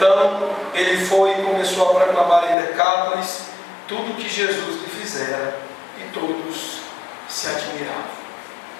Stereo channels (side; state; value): right; drops out; at 2.6 s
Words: ele foi e começou a proclamar em Decápolis tudo o que Jesus lhe fizera, e todos se admiravam.